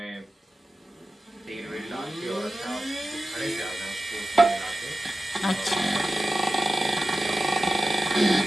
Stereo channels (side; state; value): both; normal; correlation 0.93